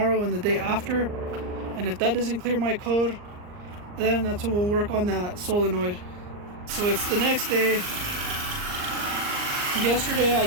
and the day after. And if that doesn't clear my code, then that's when we'll work on that solenoid. So it's the next day. Yesterday I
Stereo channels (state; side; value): late; left; 39 ms